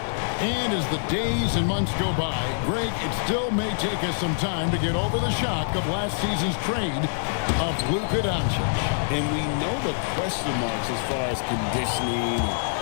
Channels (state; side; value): silent; right; digital silence